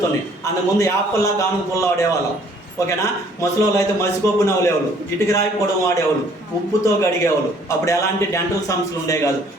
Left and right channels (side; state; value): both; normal; correlation 0.59